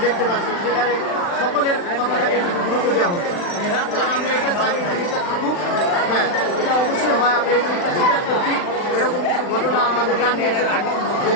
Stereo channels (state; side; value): late; right; 40 ms